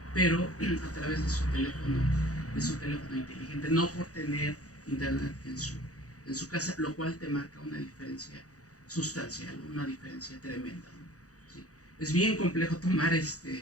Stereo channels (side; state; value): right; late; 0.66 ms